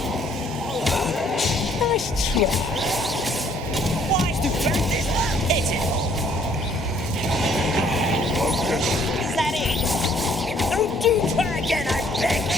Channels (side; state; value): both; normal; correlation 0.63